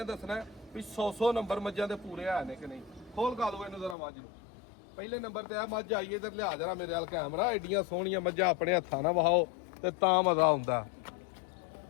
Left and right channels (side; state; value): right; drops out; at 4.0 s